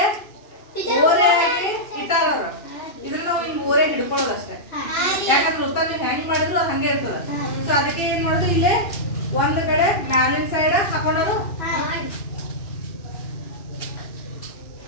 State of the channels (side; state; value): right; late; 2.7 ms